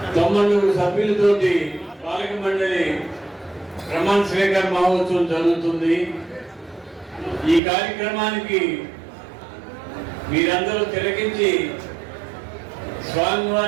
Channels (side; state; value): left; drops out; at 7.6 s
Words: 90 సభ్యులతోటి పాలక మండలి ప్రమాణ స్వీకార మహోత్సవం జరుగుతుంది. ఈ కార్యక్రమానికి మీరందరూ తిలకించి